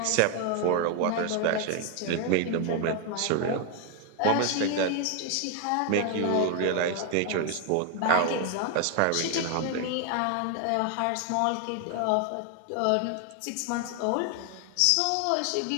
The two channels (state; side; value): different; both; correlation 0.01